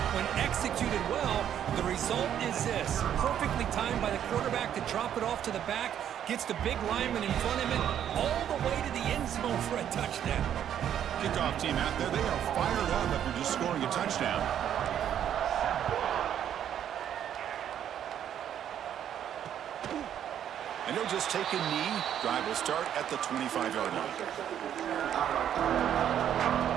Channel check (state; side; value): quieter; left; 9.9 dB